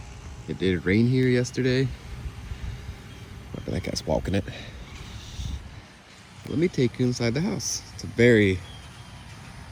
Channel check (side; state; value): both; identical; correlation 1.00